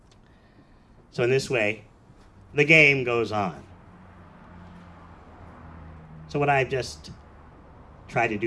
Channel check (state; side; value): identical; both; correlation 1.00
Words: So in this way, the game goes on. So what I've just tried to